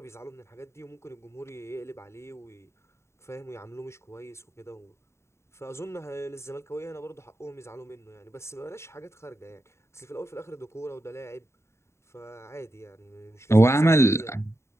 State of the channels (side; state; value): right; late; 0.13 ms